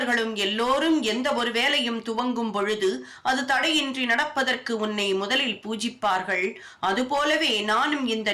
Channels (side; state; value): both; identical; correlation 1.00